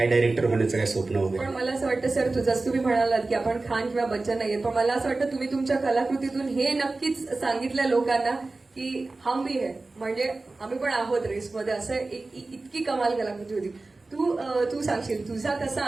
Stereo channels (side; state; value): left; quieter; 3.4 dB